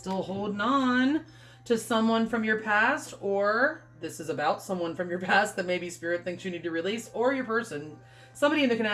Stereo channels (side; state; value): both; identical; correlation 1.00